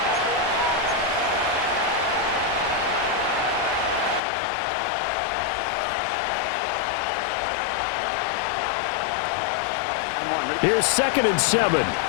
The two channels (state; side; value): drops out; right; at 4.2 s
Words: Here's 2nd and 7. Here